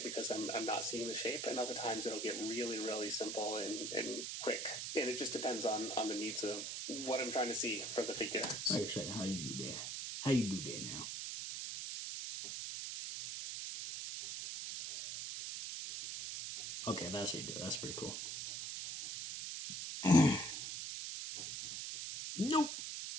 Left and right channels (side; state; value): right; noise; hiss, 4 dB below the sound